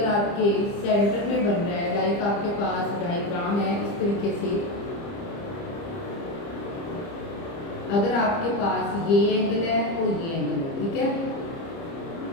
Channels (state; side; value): late; right; 30 ms